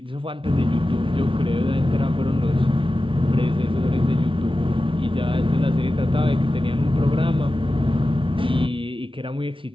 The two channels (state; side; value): late; left; 0.25 ms